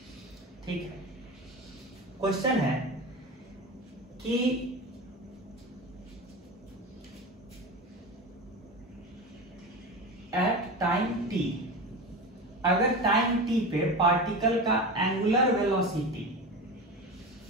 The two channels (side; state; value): both; normal; correlation 0.26